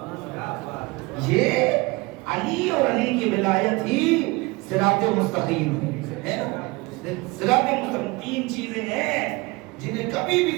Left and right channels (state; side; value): quieter; left; 24.2 dB